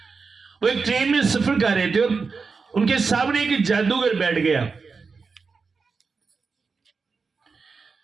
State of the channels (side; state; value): left; quieter; 4.8 dB